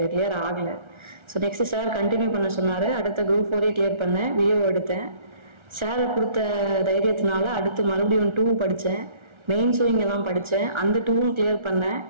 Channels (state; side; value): late; left; 1.4 ms